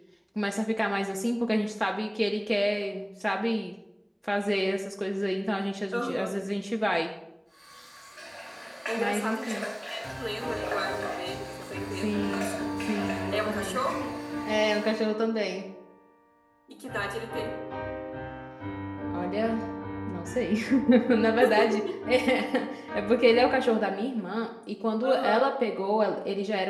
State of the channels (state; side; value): identical; both; correlation 1.00